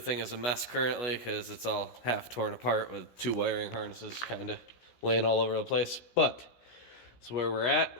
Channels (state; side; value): late; right; 16 ms